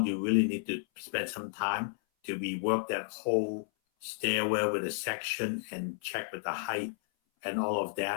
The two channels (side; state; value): right; silent; 56 dB below the other